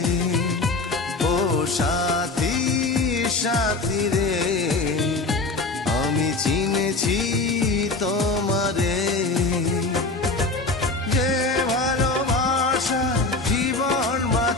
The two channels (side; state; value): right; quieter; 3.4 dB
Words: ও সাথী সাথী রে আমি চিনেছি তোমারে। যে ভালোবাসা জীবন